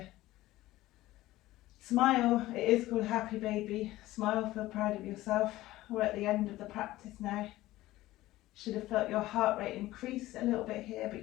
Smile. It is called happy baby. Smile, feel proud of yourself. We're at the end of the practice now. Should have felt your heart rate increase a little bit here, but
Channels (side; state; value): right; quieter; 16.7 dB